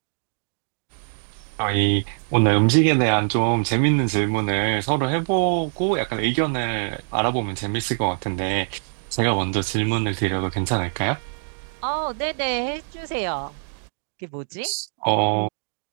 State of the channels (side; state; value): left; silent; digital silence